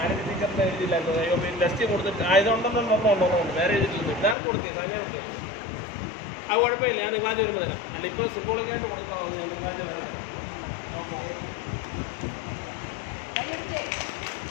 ആരതി ടീച്ചറിന് എഴുതിയില്ലായിരുന്നു. ടെസ്റ്റ് കൊടുത്തിട്ട് ആയതുകൊണ്ടൊന്നും വേറെ എഴുതിയിട്ടില്ല. ഇതാണ് കൊടുത്തത്, സമയം കൊടുത്തത്. ആ കുഴപ്പമില്ല, ഞാൻ തിങ്കളാഴ്ച വരുമ്പോൾ തരാം. അല്ല ഇപ്പോൾ സിംബോളിക്കായിട്ട് കൊടുക്കാവുന്നു. തിങ്കളാഴ്ച വരാം.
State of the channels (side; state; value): right; drops out; at 4.4 s